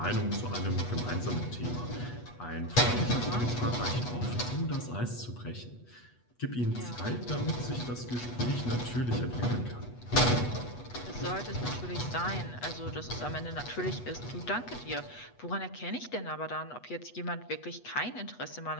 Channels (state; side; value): late; right; 8.2 ms